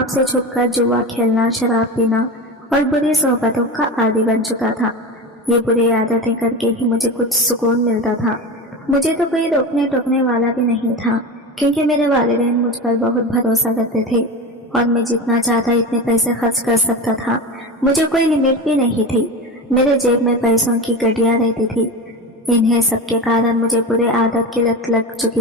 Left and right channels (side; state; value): both; normal; correlation 0.25